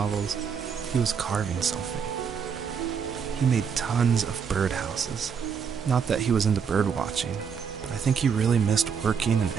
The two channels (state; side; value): quieter; left; 6.6 dB